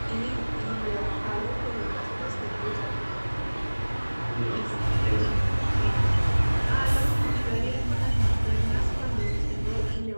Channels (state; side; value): inverted; both; correlation -1.00